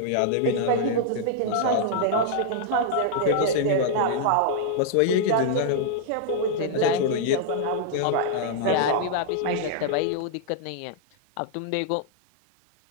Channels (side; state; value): both; different; correlation -0.01